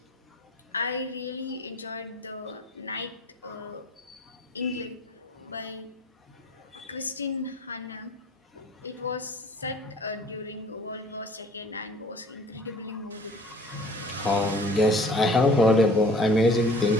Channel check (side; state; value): both; normal; correlation 0.49